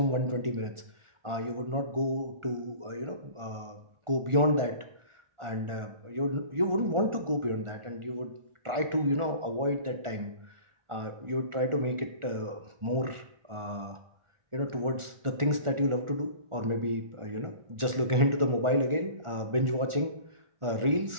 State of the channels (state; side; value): late; left; 1.4 ms